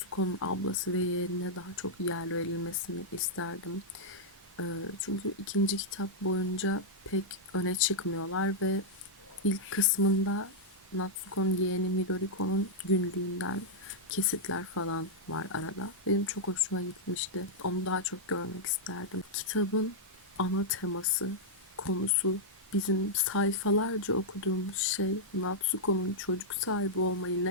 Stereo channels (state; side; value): normal; both; correlation -0.07